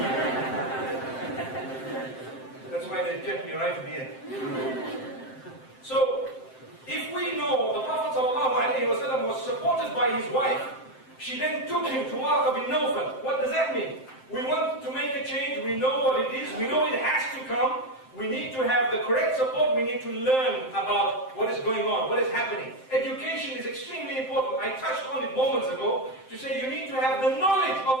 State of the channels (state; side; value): late; right; 7.7 ms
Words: That's why they kept me right at the end. So, if we know the Prophet ﷺ was supported by his wife, she then took him to Warqa bin Nawfal. What does that mean? We want to make a change, we know what it is, we know it has to come, we need to have the correct support, we need to learn about what is going on, what is happening. Education is extremely important. I touched on it moments ago to say you need to have the knowledge